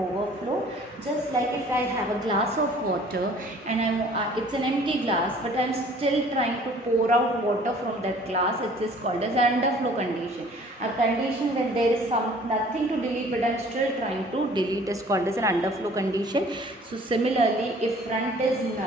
Just like if I have a glass of water and it's an empty glass, but I am still trying to pour out water from that glass, it is called as an underflow condition. A condition when there is nothing to delete, but I am still trying to delete, is called as an underflow condition. So similarly, if front is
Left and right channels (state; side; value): normal; both; correlation 0.52